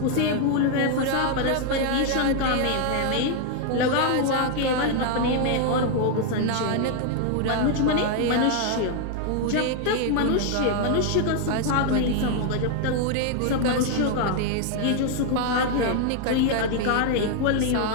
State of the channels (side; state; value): both; different; correlation 0.00